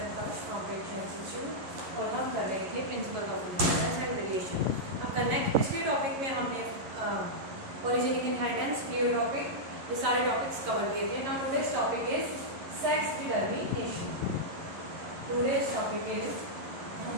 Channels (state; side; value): late; left; 11 ms